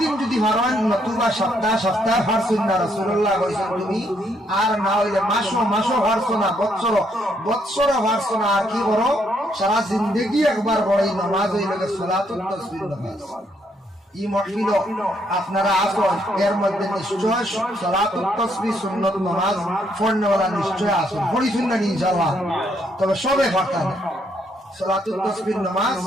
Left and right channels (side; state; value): both; normal; correlation 0.73